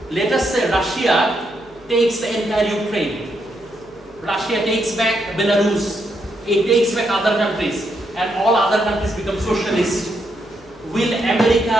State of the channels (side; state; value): both; normal; correlation 0.79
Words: Let us say Russia takes the entire Ukraine. Russia takes back Belarus. It takes back other countries. And all other countries become socialist. Will